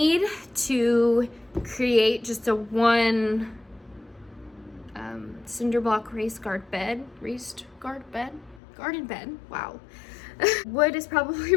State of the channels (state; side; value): drops out; right; at 8.6 s